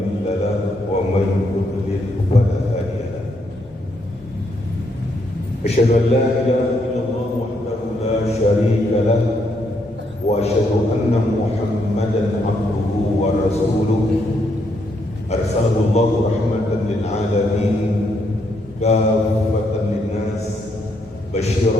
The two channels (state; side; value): normal; both; correlation 0.76